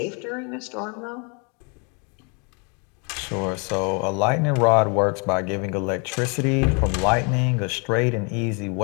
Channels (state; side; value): quieter; right; 34.4 dB